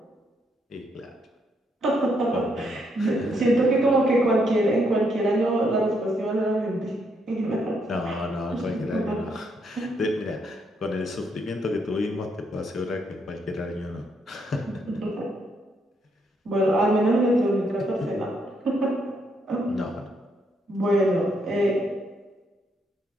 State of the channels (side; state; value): both; normal; correlation 0.75